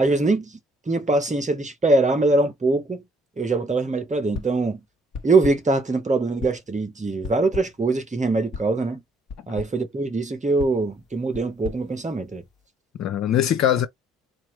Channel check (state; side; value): normal; both; correlation 0.66